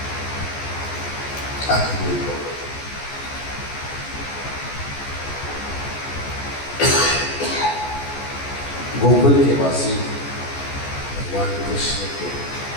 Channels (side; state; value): right; late; 14 ms